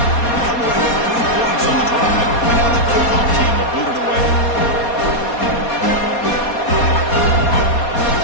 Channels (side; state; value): right; late; 4.2 ms